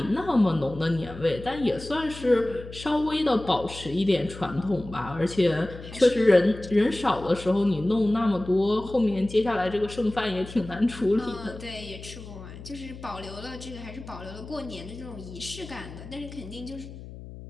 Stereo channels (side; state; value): left; noise; hum, 14 dB below the sound